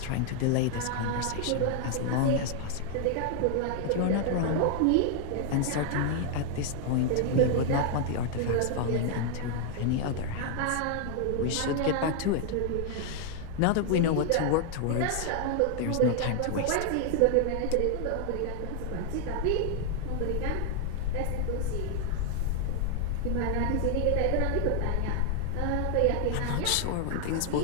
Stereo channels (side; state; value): both; different; correlation 0.00